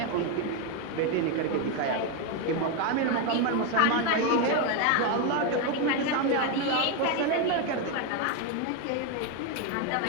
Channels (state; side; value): different; both; correlation 0.02